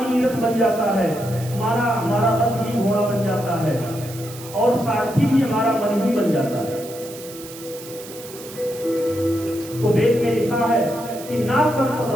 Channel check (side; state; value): right; noise; hiss, 15 dB below the sound